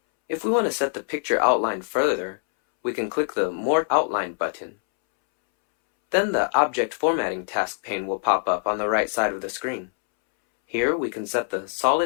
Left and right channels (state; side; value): silent; right; 63 dB below the other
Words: If we want to set the picture outline further, we can click the More Outline button. Then the Object Formatting task pane will pop up on the right side of the screen. Here we can set the